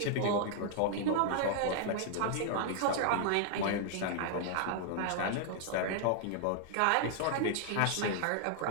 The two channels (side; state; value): both; different; correlation 0.00